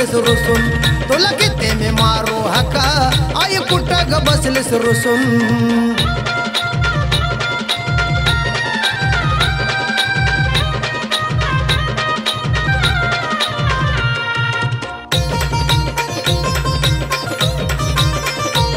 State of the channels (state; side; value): identical; both; correlation 1.00